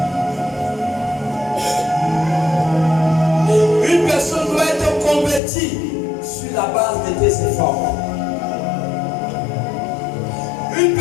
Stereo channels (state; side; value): drops out; right; at 5.4 s